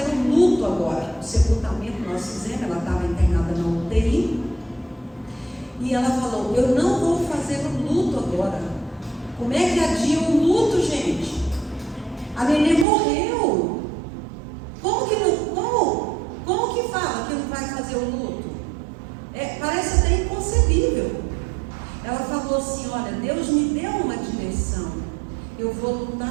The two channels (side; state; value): left; drops out; at 12.9 s